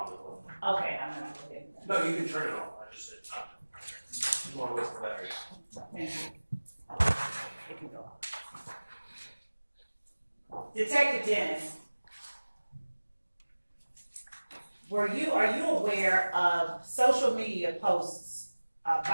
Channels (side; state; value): both; inverted; correlation -1.00